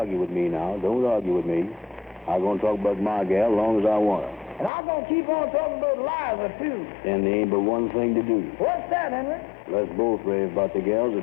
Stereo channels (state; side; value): drops out; right; at 4.7 s